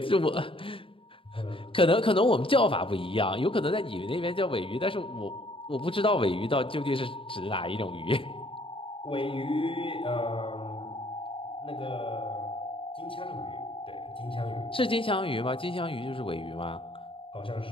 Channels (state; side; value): late; right; 0.26 ms